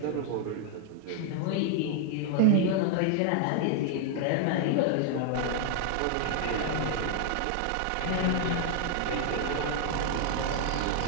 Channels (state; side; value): different; both; correlation 0.00